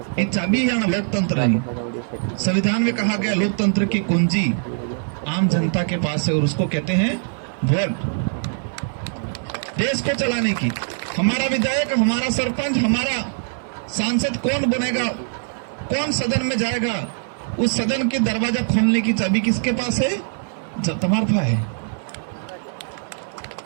ये चाबी है ना लोकतंत्र की। संविधान में कहा गया लोकतंत्र की कुंजी आम जनता के पास है और उसको कहते हैं वोट। देश को चलाने की हमारा विधायक, हमारा सरपंच, हमारा सांसद कौन बनेगा, कौन सदन में जाएगा, उस सदन के दरवाजा खोलने की चाबी किसके पास है, तुम्हारे पास है।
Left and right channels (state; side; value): silent; left; digital silence